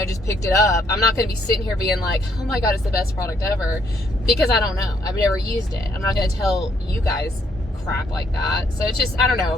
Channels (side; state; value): both; normal; correlation 0.70